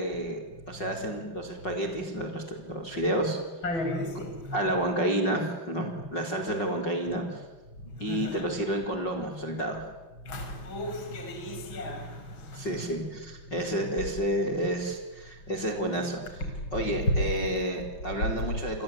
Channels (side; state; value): right; late; 5.4 ms